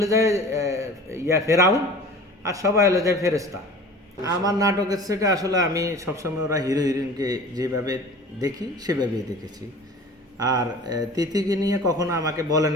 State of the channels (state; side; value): normal; both; correlation 0.41